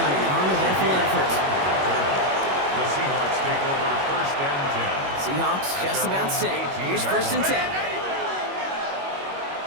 an uneventful effort. The Seahawks take over 1st and 10. Seahawks just about set. Here's 1st and 10.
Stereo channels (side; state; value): left; late; 21 ms